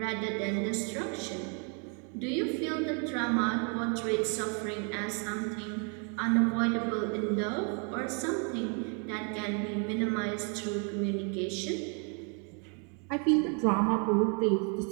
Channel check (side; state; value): left; quieter; 38.4 dB